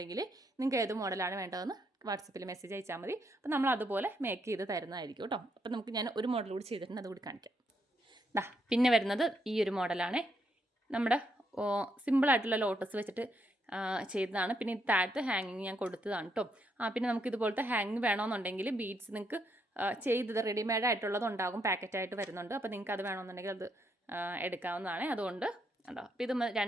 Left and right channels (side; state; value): both; normal; correlation 0.76